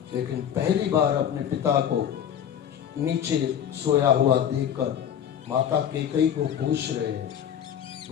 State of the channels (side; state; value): right; quieter; 9.3 dB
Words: लेकिन पहली बार अपने पिता को नीचे सोया हुआ देखकर माता कैकेयी को पूछ रहे हैं,